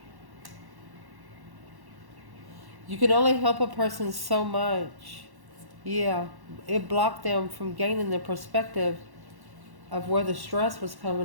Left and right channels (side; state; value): left; late; 1.1 ms